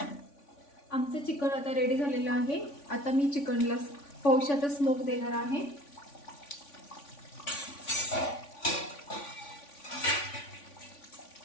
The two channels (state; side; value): late; right; 3.5 ms